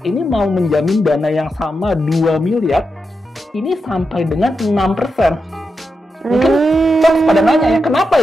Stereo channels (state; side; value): normal; both; correlation 0.87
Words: ini mau menjamin dana yang sama 2 miliar, ini sampai dengan 6%. Mungkin pada nanya ya, kenapa